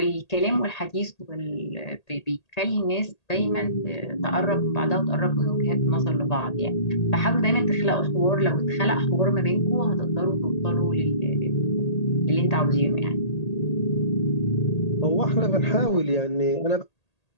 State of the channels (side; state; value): right; late; 1.8 ms